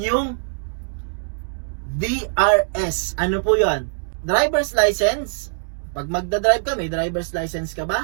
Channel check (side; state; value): left; silent; digital silence